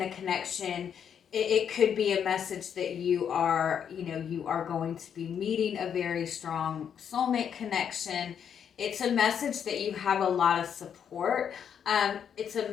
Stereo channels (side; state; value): right; quieter; 8.1 dB